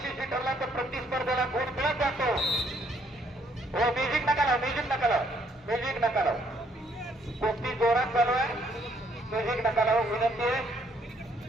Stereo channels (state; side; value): normal; both; correlation 0.68